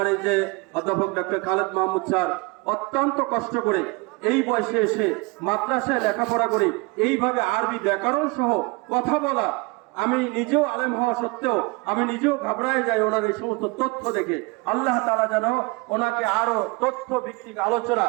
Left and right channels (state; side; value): quieter; left; 27.0 dB